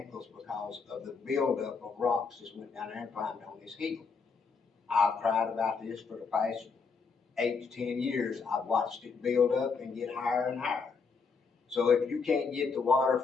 because of the buildup of rocks that went down there and climbed on this hill. I've cried about this for the past 8 to 10 years. I've watched it build up and get higher and higher. So if you can't get the water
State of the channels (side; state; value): right; quieter; 5.0 dB